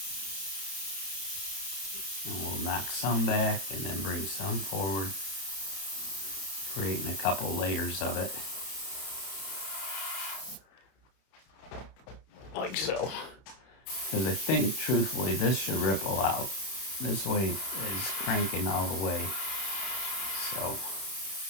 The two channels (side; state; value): right; late; 31 ms